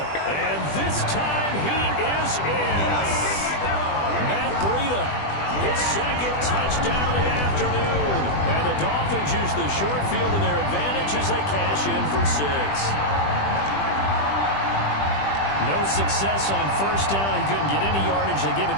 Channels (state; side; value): late; right; 20 ms